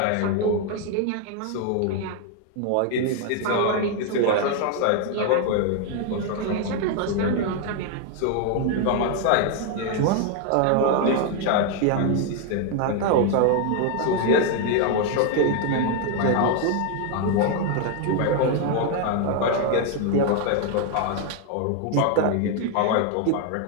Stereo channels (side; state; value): both; different; correlation 0.01